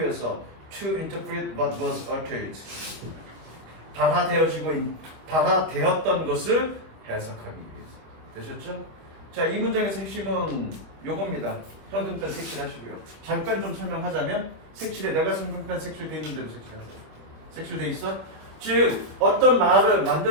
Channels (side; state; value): left; late; 25 ms